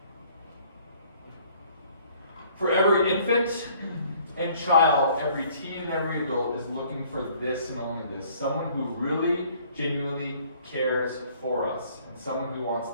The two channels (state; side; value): inverted; both; correlation -0.58